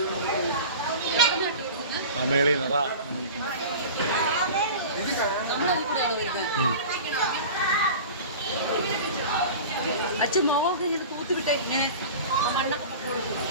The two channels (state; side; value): inverted; both; correlation -0.35